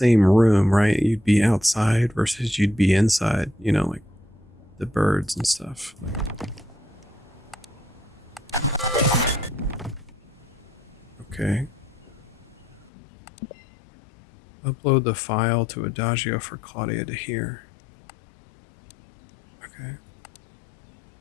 room, right? You'd be outside versus you'd be inside, you know, like the birds and stuff. Okay. Upload the file to Adagio for Claudia to hear. Okay.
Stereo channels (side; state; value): right; drops out; at 12.9 s